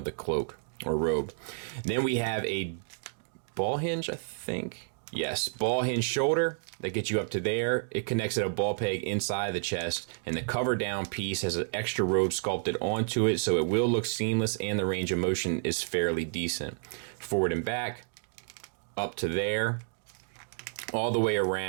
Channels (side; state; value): left; silent; digital silence